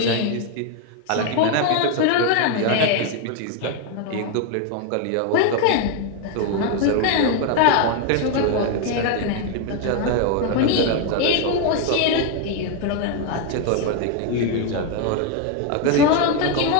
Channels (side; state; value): both; different; correlation 0.01